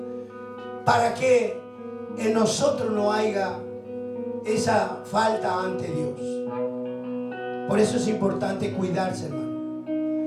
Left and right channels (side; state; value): both; identical; correlation 1.00